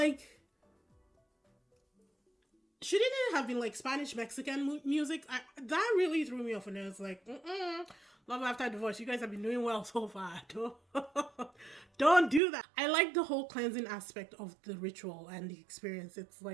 shouldn't it have been like Spanish Mexican music? That really threw me off, and I was like, Love After Divorce, you guys have been doing well so far. Don't do that. I like the whole cleansing aspect of the ritual and the experience. It's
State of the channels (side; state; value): left; drops out; at 12.4 s